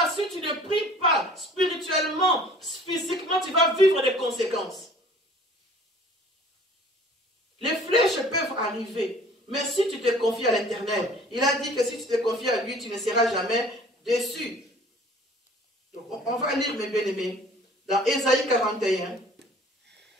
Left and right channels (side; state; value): both; normal; correlation 0.50